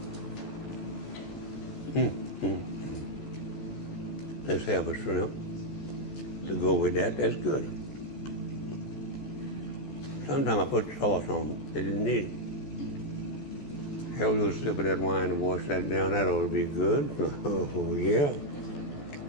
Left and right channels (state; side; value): late; right; 14 ms